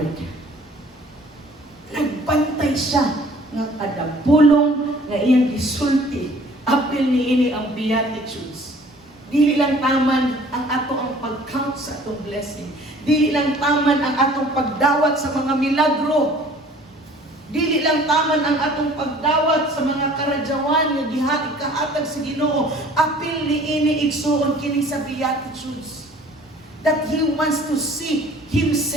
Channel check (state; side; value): normal; both; correlation 0.51